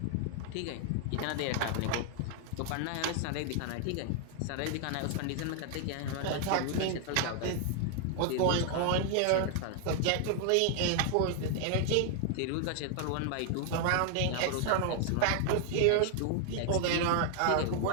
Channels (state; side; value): different; both; correlation 0.00